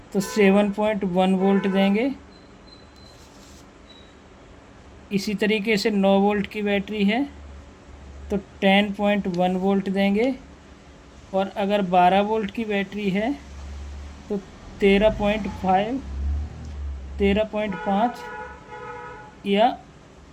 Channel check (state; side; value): identical; both; correlation 1.00